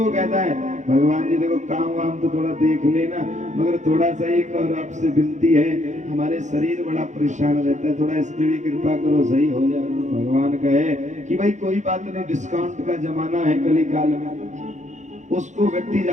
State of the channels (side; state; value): left; late; 0.35 ms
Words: कहता है भगवान जी देखो काम वाम तो थोड़ा देख लेना, मगर थोड़ा सा एक और आपसे विनती है, हमारे शरीर बड़ा परेशान रहता है, थोड़ा इस पे भी कृपा करो, सही हो जाए। भगवान कहे कि भाई कोई बात नहीं, डिस्काउंट का जमाना है कली काल में। उसको व्यक्ति